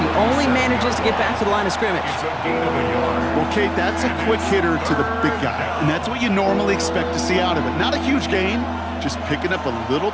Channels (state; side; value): identical; both; correlation 1.00